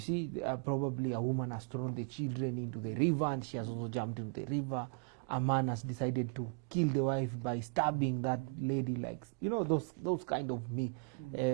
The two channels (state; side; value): quieter; left; 39.7 dB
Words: probably a woman has thrown the children into the river and she has also jumped into the river. A man has decided to kill the wife by stabbing that lady, like, you know, those kind of